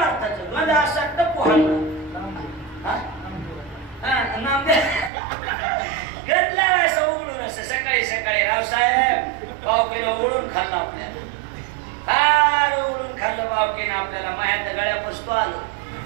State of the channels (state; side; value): drops out; left; at 5.1 s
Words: गंध असं तर पोहायला गंधला असं उघडून असं सकाळी सकाळी रावसाहेब पावकीनं उघडून खाल्लं आपल्याला फार उघडून खाल्लं पावकीनं आपल्याला मायाच्या गळ्या पुसतो आलो